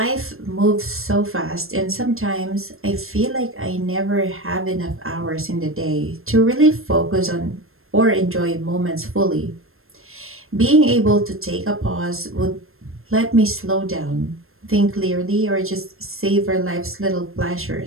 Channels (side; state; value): left; late; 0.61 ms